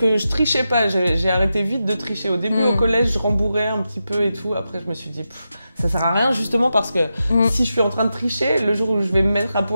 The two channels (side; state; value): both; inverted; correlation -0.89